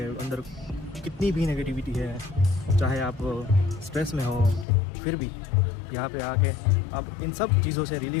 अंदर कितनी भी नेगेटिविटी है, चाहे आप स्ट्रेस में हो, फिर भी यहाँ पे आके आप इन सब चीज़ों से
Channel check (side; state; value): right; drops out; at 4.7 s